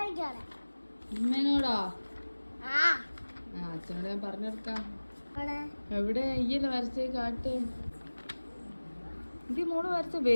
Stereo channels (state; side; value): inverted; both; correlation -1.00